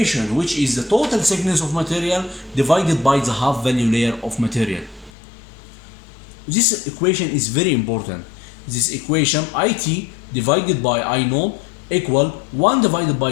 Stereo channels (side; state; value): right; drops out; at 5.1 s